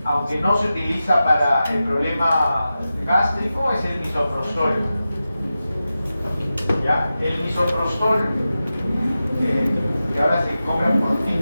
aunque no se utiliza para el problema gástrico, es el misoprostol. ¿Ya? El misoprostol, que ahora se compra por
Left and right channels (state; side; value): inverted; both; correlation -0.93